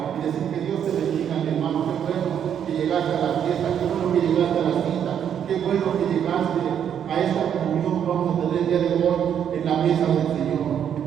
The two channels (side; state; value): left; quieter; 8.8 dB